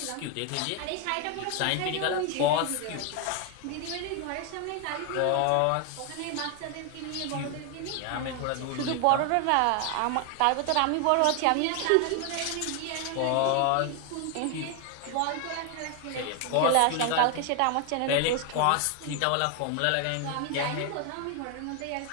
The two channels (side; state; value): both; different; correlation 0.01